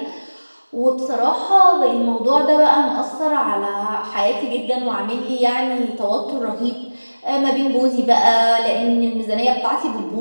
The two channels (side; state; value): both; inverted; correlation -1.00